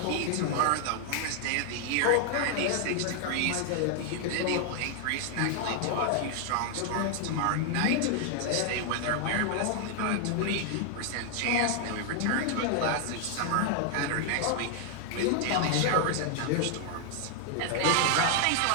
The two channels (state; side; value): different; both; correlation 0.00